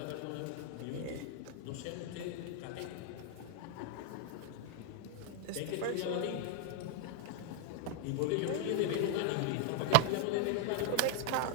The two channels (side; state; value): both; different; correlation 0.00